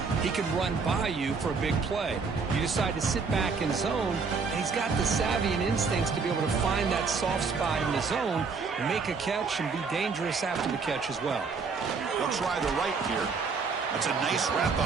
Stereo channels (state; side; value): quieter; left; 4.9 dB